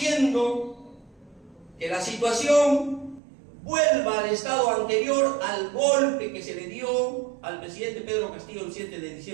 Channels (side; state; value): left; drops out; at 3.2 s